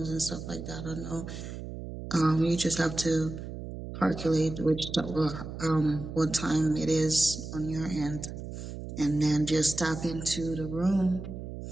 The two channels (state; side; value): noise; right; hum, 9 dB below the sound